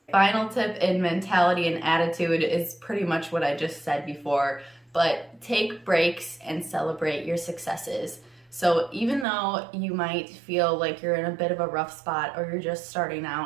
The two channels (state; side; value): drops out; left; at 9.2 s